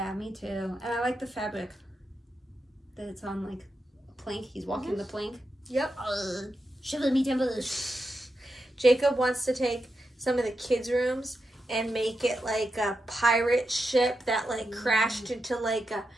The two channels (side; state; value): both; normal; correlation 0.87